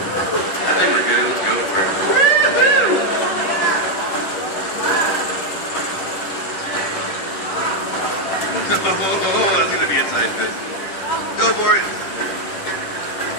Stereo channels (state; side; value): late; right; 10 ms